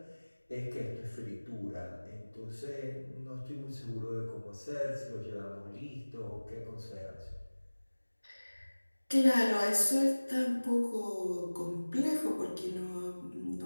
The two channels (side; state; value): both; inverted; correlation -1.00